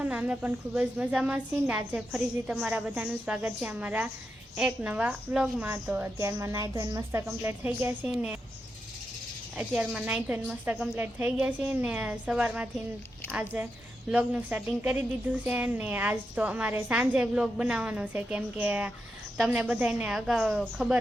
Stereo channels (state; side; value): normal; both; correlation 0.87